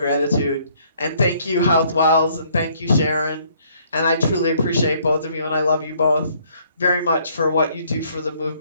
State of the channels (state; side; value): inverted; both; correlation -0.64